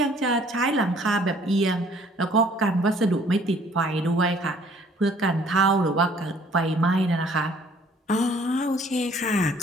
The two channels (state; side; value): normal; both; correlation 0.58